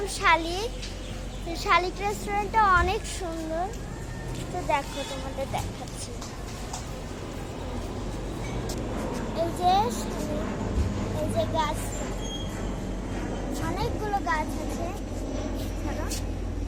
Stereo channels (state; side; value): identical; both; correlation 1.00